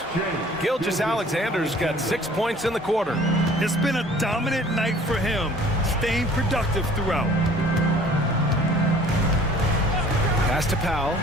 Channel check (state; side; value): normal; both; correlation 0.51